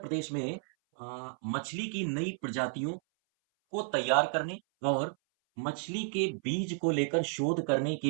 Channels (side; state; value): left; silent; 56 dB below the other